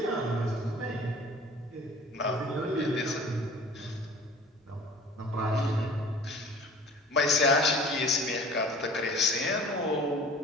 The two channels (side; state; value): both; normal; correlation 0.45